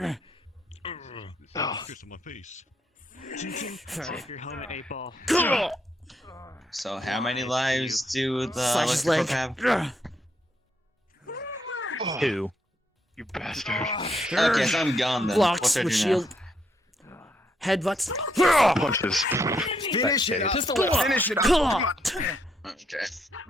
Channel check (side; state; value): both; normal; correlation 0.75